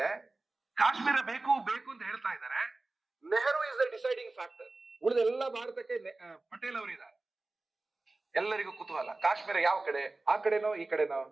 ಕಾಶ್ಮೀರ ಬೇಕು ಬೇಕು ಅಂತ ಹೇಳ್ತಾ ಇದ್ದಾರೆ. Nehru is the deciding factor. ಉಳಿದ ಎಲ್ಲ ಭಾರತಕ್ಕೆ ಪಟೇಲ್ ಅವರಿದ್ದಾರೆ. ಎಲ್ಲರಿಗೂ ಕುತೂಹಲ, ಕಾಶ್ಮೀರ ಯಾವ ಕಡೆ? ಆ ಕಡೆನೋ ಈ ಕಡೆನೋ?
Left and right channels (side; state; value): left; quieter; 3.2 dB